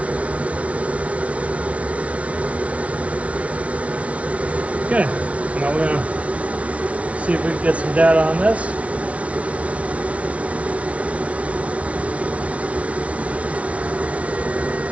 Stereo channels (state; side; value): late; left; 0.064 ms